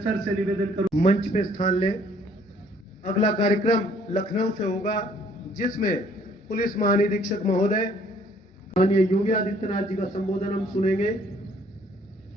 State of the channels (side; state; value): both; normal; correlation 0.61